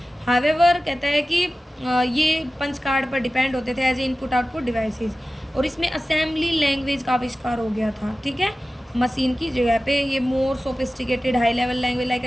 हावेवर कहता है कि ये पंच कार्ड पर डिपेंड होते थे as a input output devices. और इसमें असेंबली लैंग्वेज का आविष्कार हो गया था, ठीक है। मशीन की जगह पे ये मोर sophisticated high level language like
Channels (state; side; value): normal; both; correlation 0.95